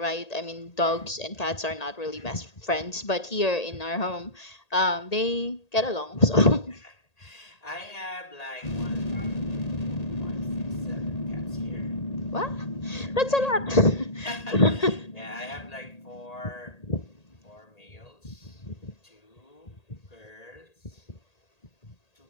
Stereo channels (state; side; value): late; right; 1.8 ms